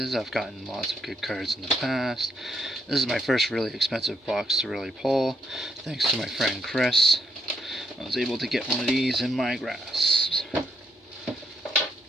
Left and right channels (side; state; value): both; normal; correlation 0.76